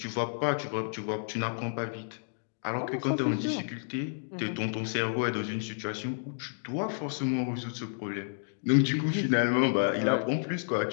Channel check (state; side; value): silent; right; digital silence